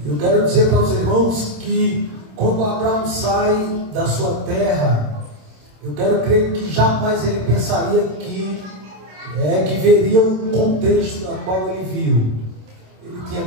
Eu quero dizer para os irmãos que quando Abraão sai da sua terra, eu quero crer que jamais ele pensaria que veria um contexto no qual ele viu. Ele tinha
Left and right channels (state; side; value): late; left; 27 ms